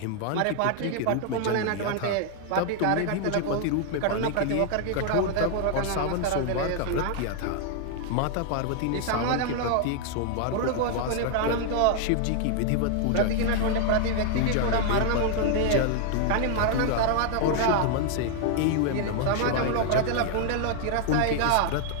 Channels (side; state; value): both; different; correlation 0.00